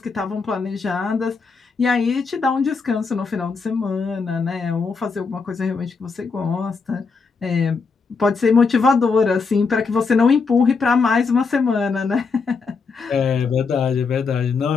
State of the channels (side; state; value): right; quieter; 4.8 dB